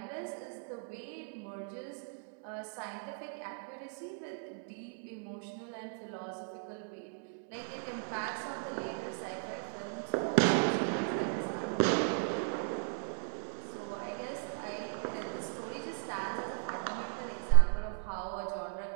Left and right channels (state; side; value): silent; left; 53 dB below the other